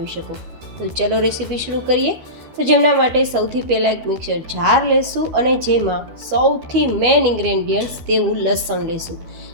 શકો. તો ચલો રેસીપી શરૂ કરીએ. તો જેમના માટે સૌથી પહેલાં એક મિક્સર જાર લેશું અને જેમાં સૌથી મેઇન ઇન્ગ્રેડિયન્ટ્સ તેવું લસણ લેશું.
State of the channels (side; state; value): left; late; 13 ms